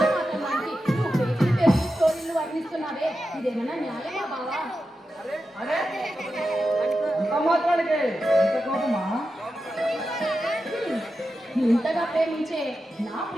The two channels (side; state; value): both; normal; correlation 0.90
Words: నువ్వు స్టోరీలు వర్ణిస్తున్నావే ఇదేమన్నా న్యాయమా బావా? ఇంతగా ప్రేమించే నా